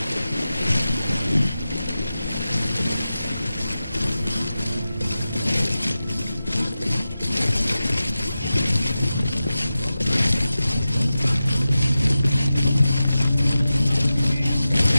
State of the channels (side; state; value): both; inverted; correlation -0.93